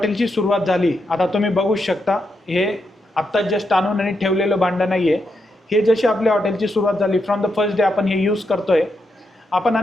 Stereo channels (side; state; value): both; normal; correlation 0.83